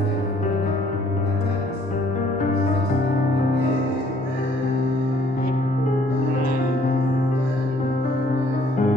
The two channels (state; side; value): normal; both; correlation 0.61